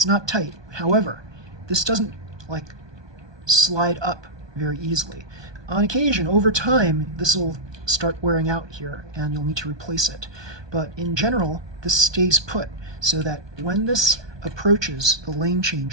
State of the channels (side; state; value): left; late; 1.2 ms